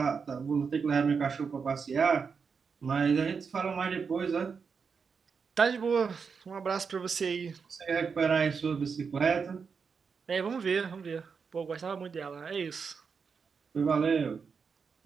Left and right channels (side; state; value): left; quieter; 5.7 dB